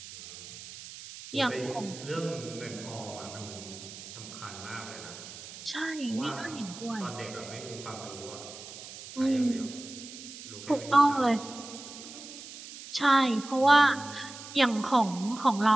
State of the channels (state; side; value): noise; right; hiss, 14 dB below the sound